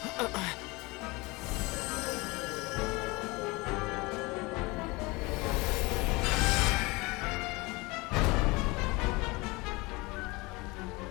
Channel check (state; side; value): quieter; right; 24.3 dB